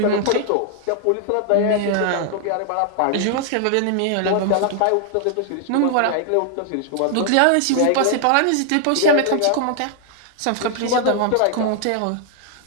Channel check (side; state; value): both; different; correlation 0.00